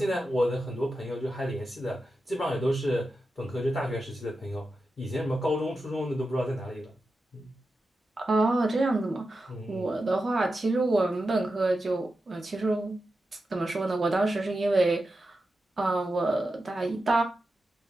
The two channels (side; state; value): both; normal; correlation 0.90